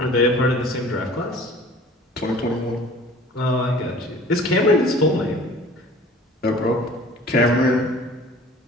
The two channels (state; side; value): normal; both; correlation 0.47